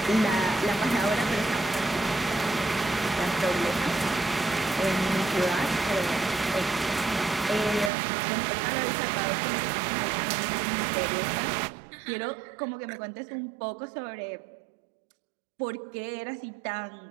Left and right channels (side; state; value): left; drops out; at 7.9 s